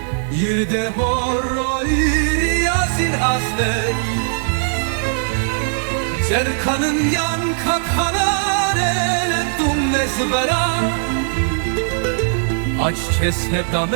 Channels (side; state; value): left; silent; digital silence